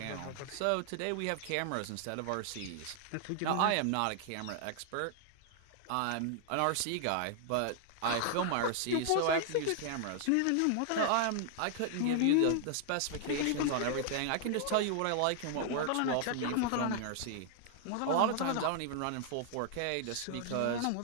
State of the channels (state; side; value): different; both; correlation 0.00